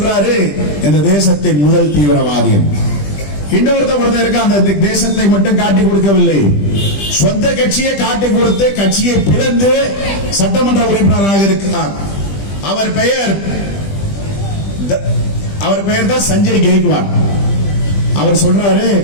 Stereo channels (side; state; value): right; late; 20 ms